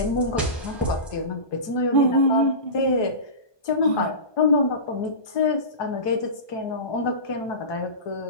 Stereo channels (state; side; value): late; right; 1.2 ms